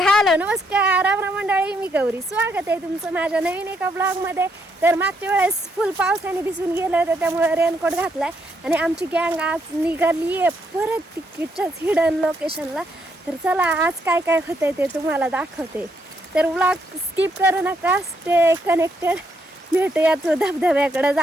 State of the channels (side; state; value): both; normal; correlation 0.75